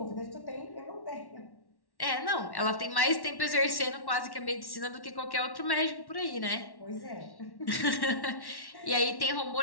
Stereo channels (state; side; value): late; right; 1.1 ms